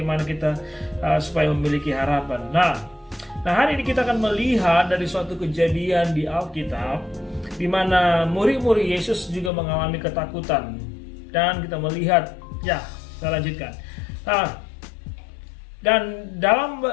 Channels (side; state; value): right; drops out; at 9.5 s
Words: kita supaya memiliki harapan. Nah hari ini kita akan melihat dari suatu kejadian di Alkitab, di mana murid-murid Yesus juga mengalami ketakutan, dan kita melihat, saya lanjutkan. Dan dalam